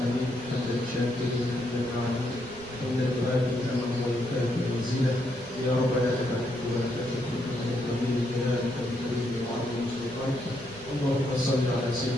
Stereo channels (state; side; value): noise; right; rumble, 19 dB below the sound